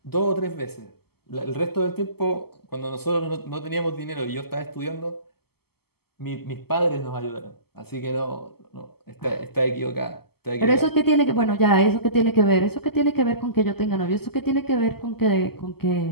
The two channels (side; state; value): right; late; 0.96 ms